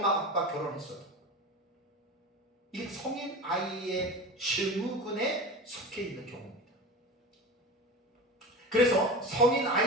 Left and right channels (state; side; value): normal; both; correlation 0.30